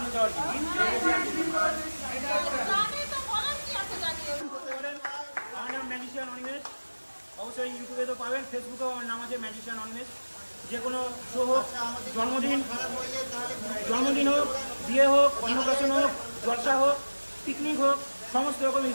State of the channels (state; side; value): inverted; both; correlation -1.00